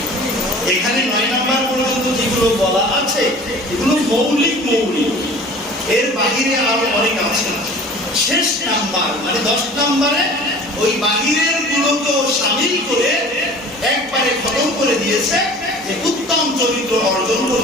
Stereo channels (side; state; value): both; normal; correlation 0.44